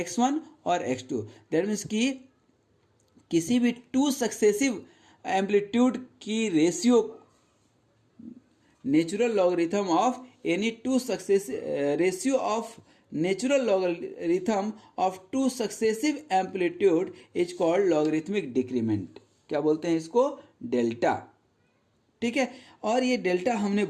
और x2। दैट मीन्स कि किसी भी 2 सक्सेसिव एम्पलीट्यूड की ratio, natural logarithm of any 2 successive ratio of natural logarithm of 2 successive amplitude is called logarithmic decrement. क्या बोलते हैं इसको, डेल्टा, ठीक है। और ये डेल्टा हमने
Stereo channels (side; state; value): both; identical; correlation 1.00